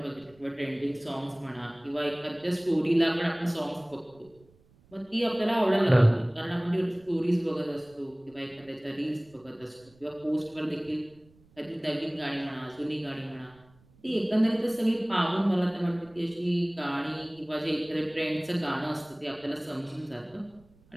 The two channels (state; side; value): noise; right; rumble, 29 dB below the sound